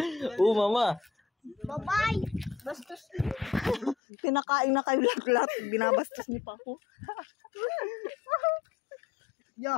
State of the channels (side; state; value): right; drops out; at 4.0 s